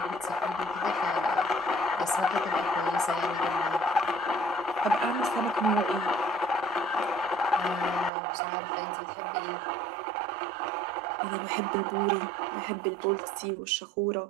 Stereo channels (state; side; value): drops out; left; at 8.1 s